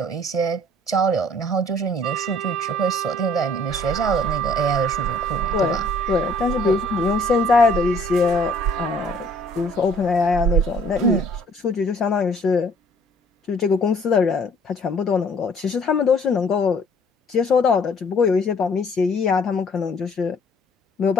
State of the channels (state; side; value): normal; both; correlation 0.58